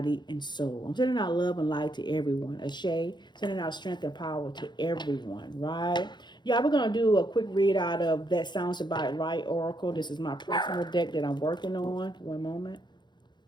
and soul. I'm sending out love and light to everyone. Ashe, sending out strength and power to everyone, right? Yeah, we're going to do a quick read out of That Sounds About Right Oracle. This is my personal deck that I'm working on. One moment.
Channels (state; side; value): late; right; 0.21 ms